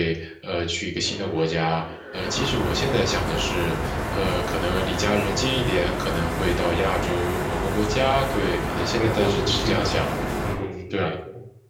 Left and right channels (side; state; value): both; identical; correlation 1.00